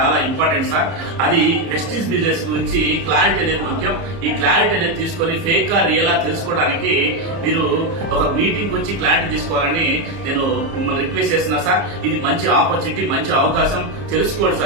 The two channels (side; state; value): left; late; 30 ms